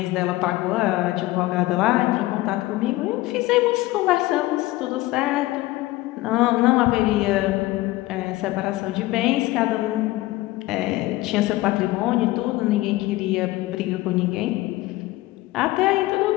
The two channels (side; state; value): right; quieter; 18.5 dB